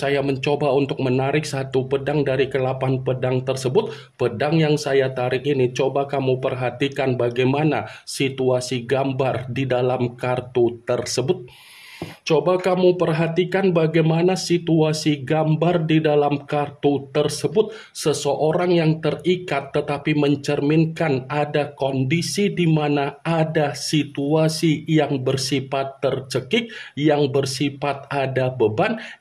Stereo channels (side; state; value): both; identical; correlation 1.00